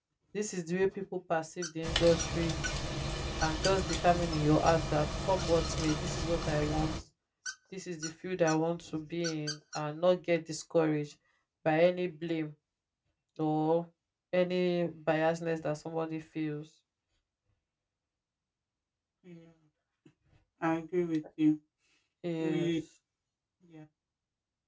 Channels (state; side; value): identical; both; correlation 1.00